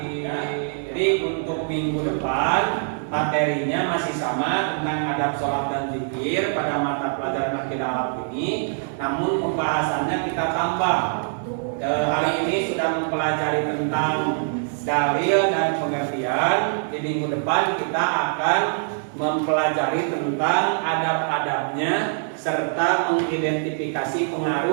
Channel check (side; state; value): left; silent; digital silence